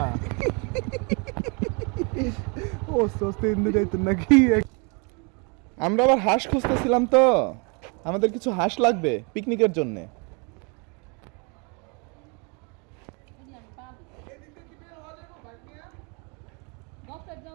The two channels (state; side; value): quieter; left; 33.1 dB